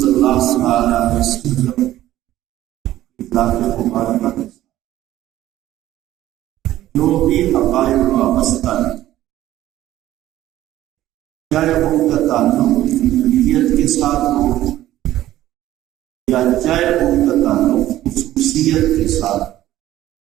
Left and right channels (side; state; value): left; quieter; 14.1 dB